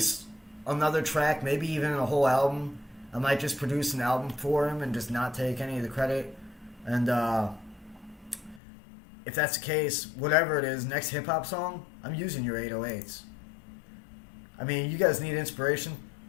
another track, maybe even a whole album. I might just produce an album for him and just not take any of the credit. And if that's the case, whatever it is, next hip-hop song, I'm using your 808s. I mean, you guys need inspiration?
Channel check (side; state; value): right; drops out; at 8.6 s